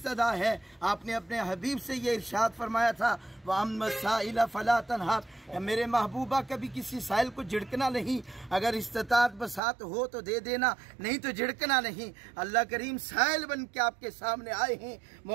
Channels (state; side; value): drops out; left; at 9.6 s